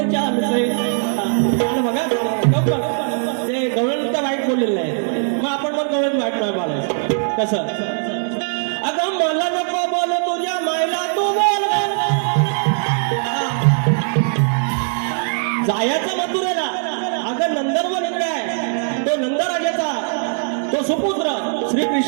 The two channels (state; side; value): silent; left; 66 dB below the other